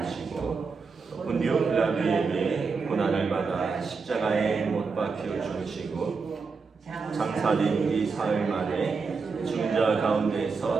본디오 빌라도에게 고난을 받아 십자가에 못 박혀 죽으시고 장사된 뒤 사흘 만에 죽은 자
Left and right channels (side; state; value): left; quieter; 4.9 dB